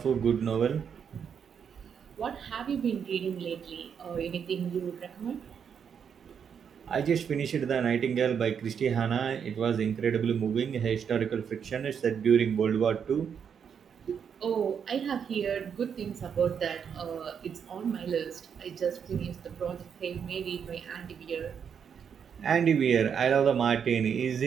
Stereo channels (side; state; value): left; quieter; 7.4 dB